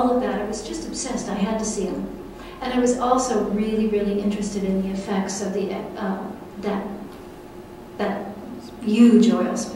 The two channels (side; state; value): both; identical; correlation 1.00